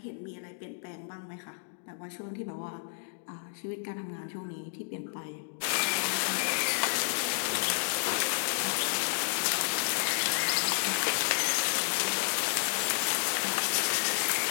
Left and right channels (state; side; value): silent; right; digital silence